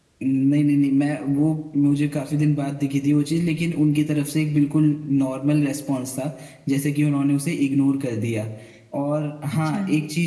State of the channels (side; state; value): both; identical; correlation 1.00